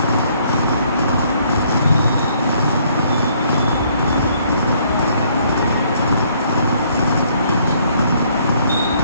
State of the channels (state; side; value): inverted; both; correlation -0.65